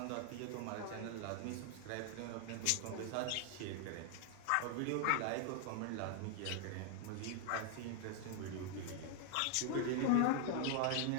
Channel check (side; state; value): both; different; correlation 0.00